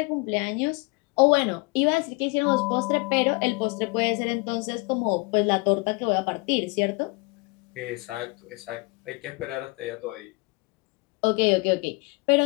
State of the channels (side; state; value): right; quieter; 27.6 dB